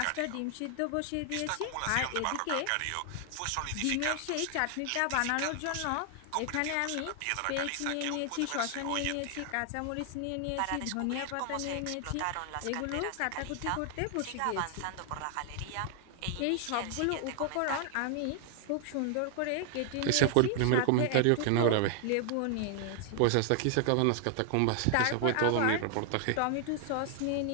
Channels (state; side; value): different; both; correlation 0.00